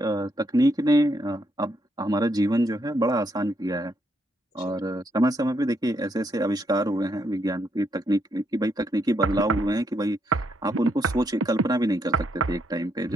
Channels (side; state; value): both; normal; correlation 0.76